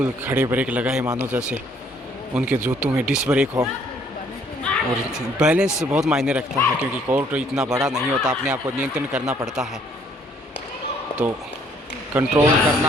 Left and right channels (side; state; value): both; normal; correlation 0.63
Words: खड़े ब्रेक लगाए मानो जैसे उनके जूतों में डिस्क ब्रेक हो। और बैलेंस बहुत मायने रखता है, क्योंकि कोर्ट इतना बड़ा नहीं होता, अपने आप को नियंत्रण करना पड़ता है, तो कंट्रोल